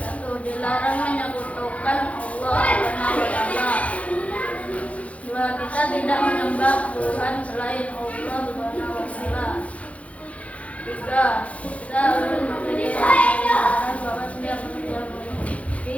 dilarang menyekutukan Allah Subhanahu wa Ta'ala. Dua, kita tidak menyembah Tuhan selain Allah Subhanahu wa Ta'ala. Tiga, kita harus memiliki kesadaran bahwa setiap manusia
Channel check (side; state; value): right; late; 0.065 ms